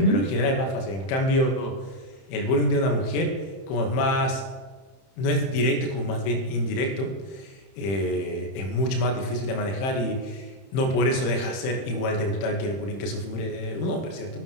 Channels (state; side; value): late; right; 31 ms